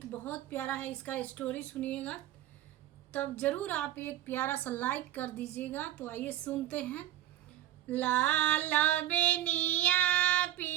बहुत प्यारा है, इसका स्टोरी सुनिएगा तब जरूर आप एक प्यारा सा लाइक कर दीजिएगा। तो आइए सुनते हैं। लाल बेनिया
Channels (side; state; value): left; quieter; 13.6 dB